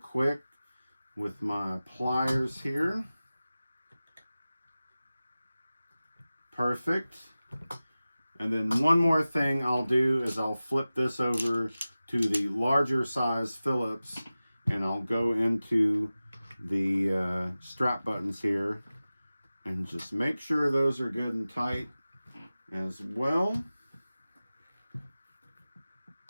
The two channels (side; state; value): both; inverted; correlation -0.96